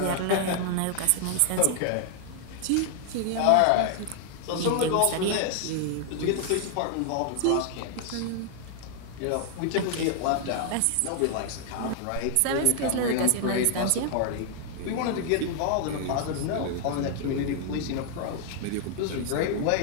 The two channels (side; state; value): both; different; correlation 0.00